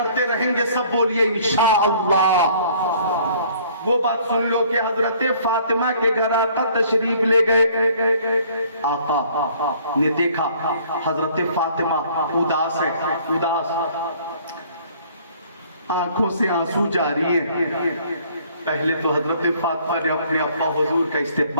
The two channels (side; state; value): both; inverted; correlation -0.57